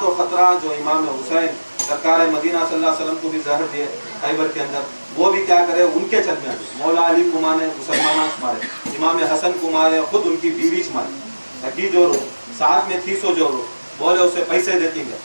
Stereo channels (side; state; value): both; inverted; correlation -1.00